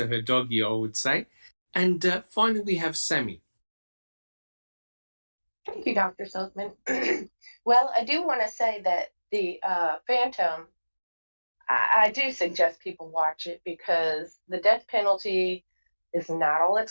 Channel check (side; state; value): both; inverted; correlation -1.00